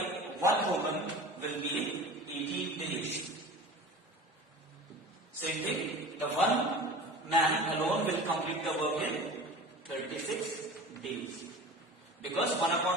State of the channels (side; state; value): both; normal; correlation 0.37